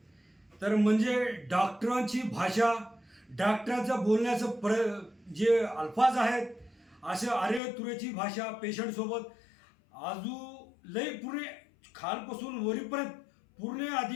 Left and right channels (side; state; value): right; drops out; at 7.6 s